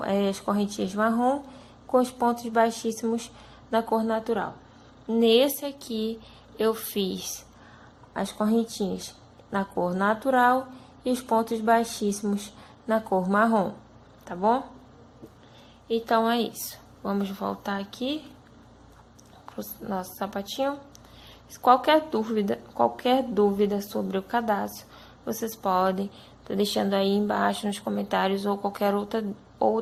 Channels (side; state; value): both; identical; correlation 1.00